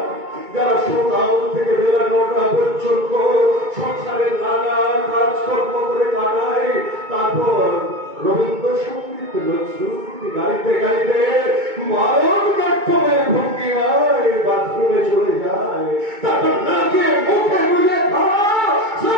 যারা সকাল থেকে বেলা 9টা পর্যন্ত সংসারের নানা কাজকর্ম করে কাটায়। তারপর রবীন্দ্রসঙ্গীত নজরুলগীতি গাইতে গাইতে ভারতনাট্যমের ভঙ্গিমায় বাথরুমে চলে যায়। তারপর নাকে মুখে গুলে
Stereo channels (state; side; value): late; left; 2.2 ms